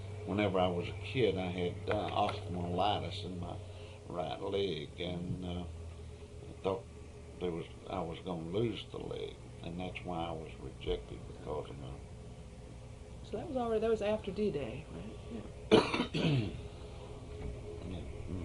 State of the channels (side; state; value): both; identical; correlation 1.00